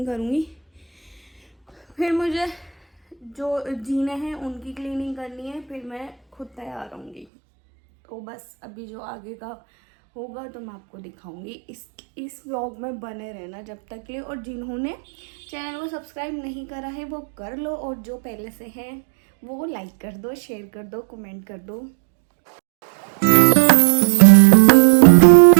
करूँगी, फिर मुझे जो जीने हैं उनकी क्लीनिंग करनी है, फिर मैं खुद तैयार होंगी। तो बस अभी जो आगे का होगा तो मैं आपको दिखाऊंगी। इस व्लॉग में बने रहना जब तक के, और जिन्होंने चैनल को सब्सक्राइब नहीं करा है वो कर लो, और जो पहले से हैं वो लाइक कर दो, शेयर कर दो, कमेंट कर दो।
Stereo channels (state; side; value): drops out; left; at 7.2 s